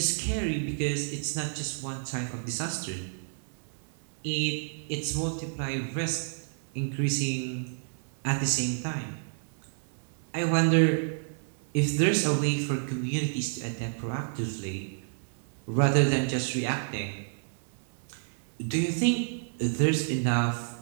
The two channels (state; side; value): silent; left; digital silence